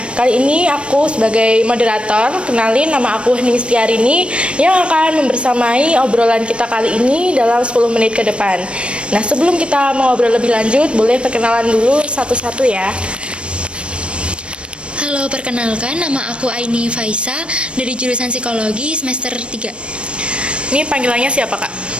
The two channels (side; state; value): left; late; 0.058 ms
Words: kali ini aku sebagai moderator, kenalin nama aku Hening Setiarini yang akan membersamai obrolan kita kali ini dalam 10 menit ke depan. Nah, sebelum kita mengobrol lebih lanjut, boleh perkenalan dulu satu-satu ya. Halo, perkenalkan nama aku Aini Faisa dari jurusan Psikologi semester 3. Ini panggilannya siapa, Kak?